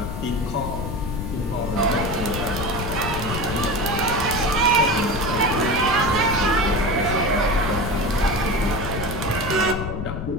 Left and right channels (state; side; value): noise; left; rumble, 5 dB below the sound